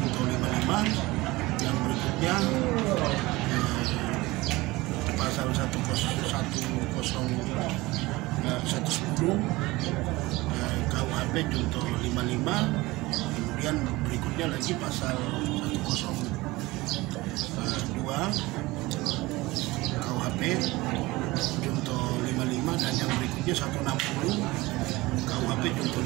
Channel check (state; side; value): quieter; left; 20.7 dB